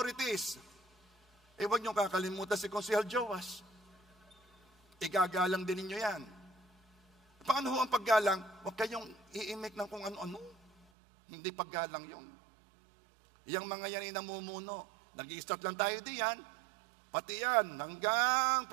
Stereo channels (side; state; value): left; drops out; at 10.9 s